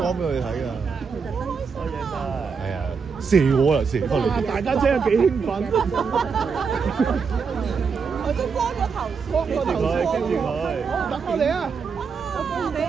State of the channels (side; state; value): left; quieter; 5.7 dB